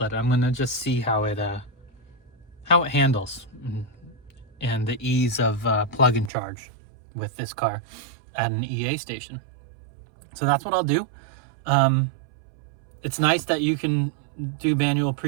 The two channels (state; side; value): drops out; left; at 6.3 s